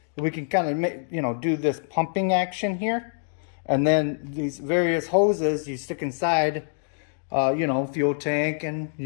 we can kind of, do this pumping action here. And then these various hoses you stick inside, fuel tank and,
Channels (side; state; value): right; silent; digital silence